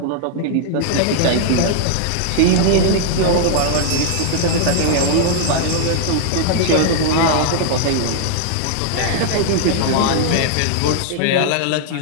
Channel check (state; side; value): different; both; correlation 0.00